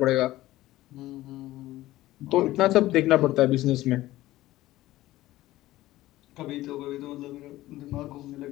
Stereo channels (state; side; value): quieter; right; 16.2 dB